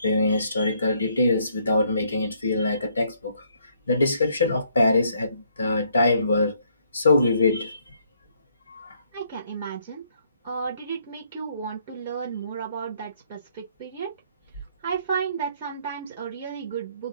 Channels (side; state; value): both; inverted; correlation -0.69